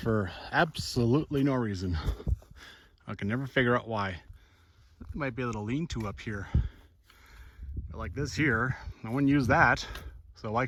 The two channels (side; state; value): both; identical; correlation 1.00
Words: absolutely no reason. I can never figure out why. There might be a little lean-to up here. But like this here, no one used that, so I